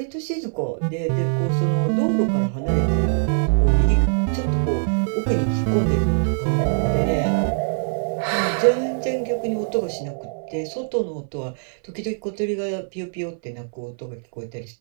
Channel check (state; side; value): silent; left; 61 dB below the other